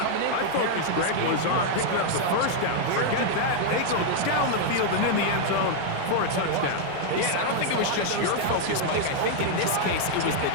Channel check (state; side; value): different; both; correlation -0.01